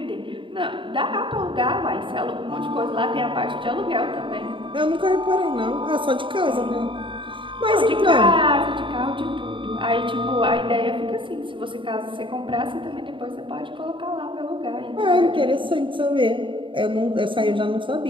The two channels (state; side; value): late; left; 0.24 ms